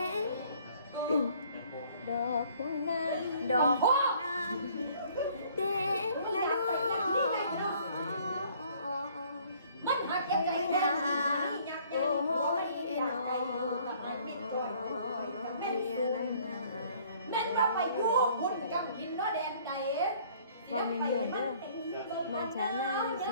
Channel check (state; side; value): inverted; both; correlation -0.58